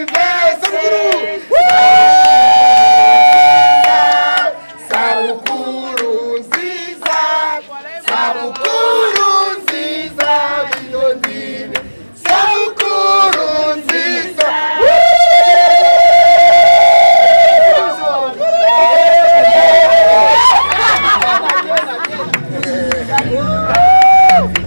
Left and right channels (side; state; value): both; inverted; correlation -1.00